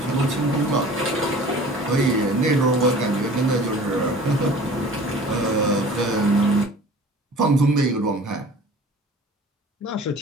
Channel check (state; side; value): normal; both; correlation 0.45